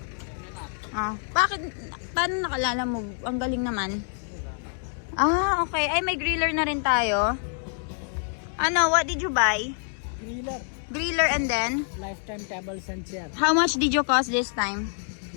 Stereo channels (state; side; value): silent; right; 60 dB below the other